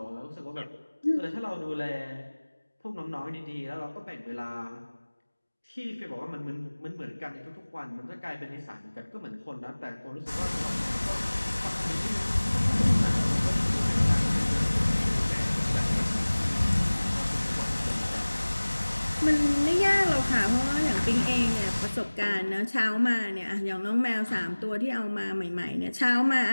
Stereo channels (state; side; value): inverted; both; correlation -1.00